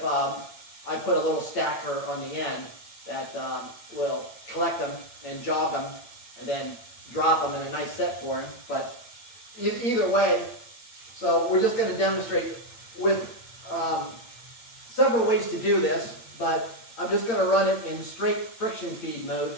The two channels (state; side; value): late; right; 8.8 ms